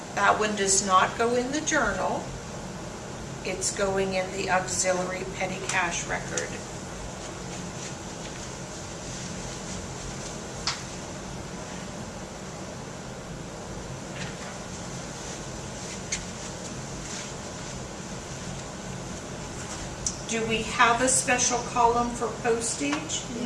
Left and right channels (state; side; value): identical; both; correlation 1.00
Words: That one does not go in the journal. It's going in the auxiliary petty cash record. Do we have a special column for postage?